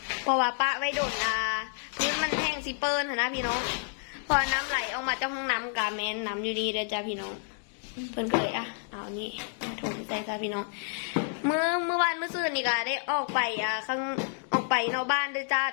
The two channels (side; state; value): right; silent; 58 dB below the other